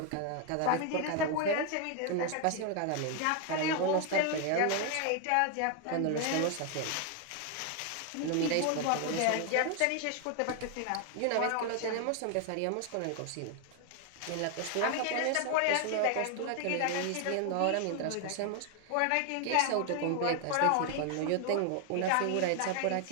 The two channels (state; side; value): different; both; correlation 0.01